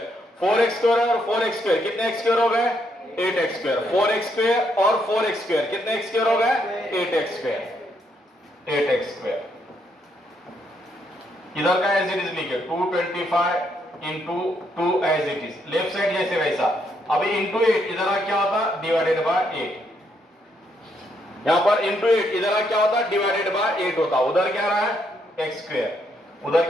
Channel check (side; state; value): both; normal; correlation 0.75